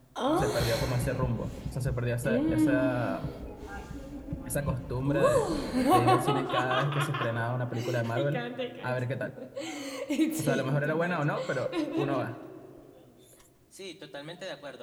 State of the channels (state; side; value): identical; both; correlation 1.00